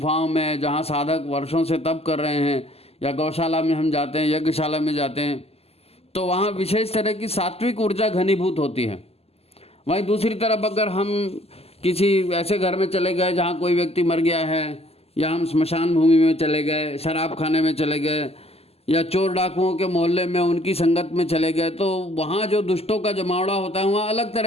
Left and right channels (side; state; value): right; late; 0.29 ms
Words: में जहाँ साधक वर्षों से तप कर रहे हैं, या गौशाला में हम जाते हैं, यज्ञशाला में जाते हैं, तो वहाँ विशेष तरह की सात्विक ऊर्जा घनीभूत होती है। वहीं दूसरी तरफ अगर हम किसी ऐसे घर में चले गए जहाँ कोई व्यक्ति मर गया है, या हम स्मशान भूमि में चले गए, शराब खाने में चले गए, या चोर डाकुओं के मोहल्ले में उनकी संगत में चले गए, तो वहाँ जो दुष्टों का जमावड़ा होता है वहाँ अलग